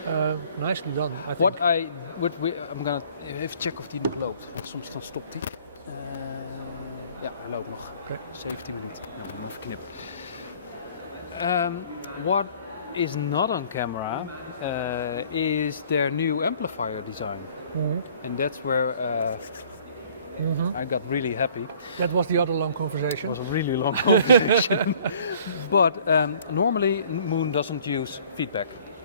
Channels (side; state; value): both; inverted; correlation -0.55